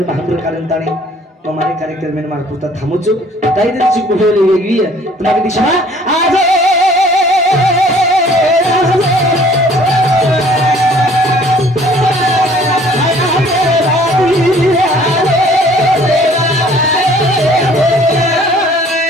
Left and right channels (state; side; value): normal; both; correlation 0.55